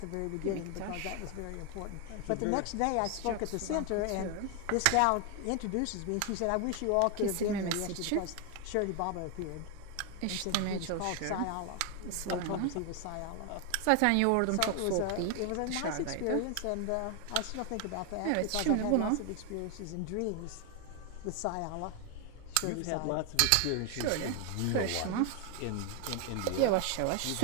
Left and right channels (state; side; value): different; both; correlation 0.01